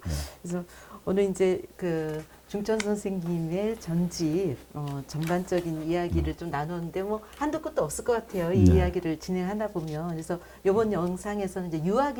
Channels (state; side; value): identical; both; correlation 1.00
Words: 그래서 오늘 이제 그 중천 선생님의 전집 전반적인 이야기를 좀 나눴는데 뭐 한도 끝도 없을 것 같아요. 이 네. 이야기를 진행하다 보면 그래서 이번 영상에서는 이제